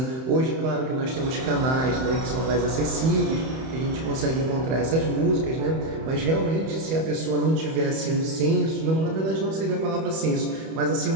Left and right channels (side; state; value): left; late; 31 ms